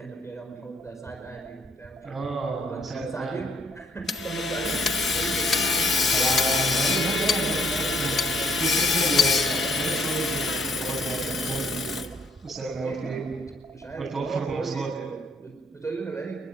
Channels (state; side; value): normal; both; correlation 0.67